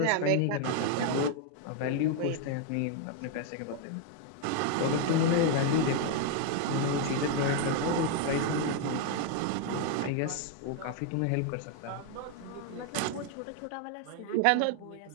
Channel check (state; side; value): different; both; correlation 0.00